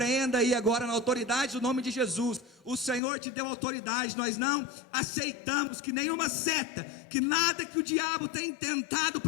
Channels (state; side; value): drops out; right; at 3.0 s